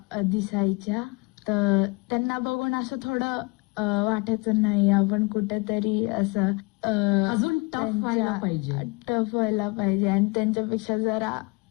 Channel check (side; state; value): right; quieter; 27.2 dB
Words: दिसायच्या. तर त्यांना बघून असं थोडं वाटायचं नाही आपण कुठेतरी असं अजून टफ व्हायला पाहिजे. टफ व्हायला पाहिजे आणि त्यांच्यापेक्षा